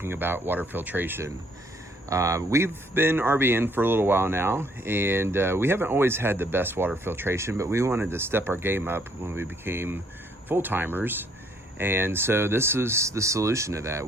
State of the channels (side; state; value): both; normal; correlation 0.65